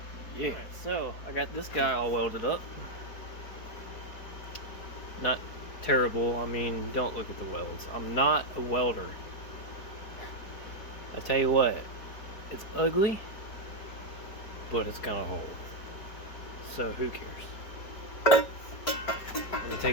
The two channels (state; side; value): late; right; 4.7 ms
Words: Yeah. Alright, so I got this guy all welded up. Not terrible. I mean, don't look at the welds. I'm not a welder. I tell you what, it's ugly, but it's gonna hold. So who cares? Let me